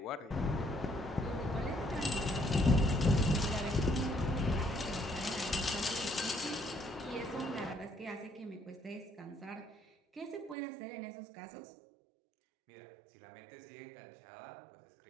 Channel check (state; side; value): drops out; left; at 10.6 s